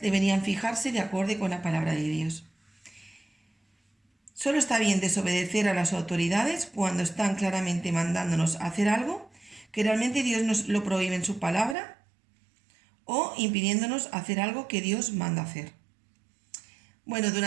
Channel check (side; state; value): left; drops out; at 11.8 s